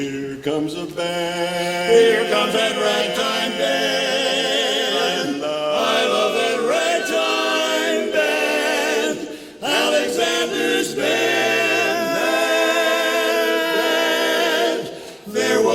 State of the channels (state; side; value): identical; both; correlation 1.00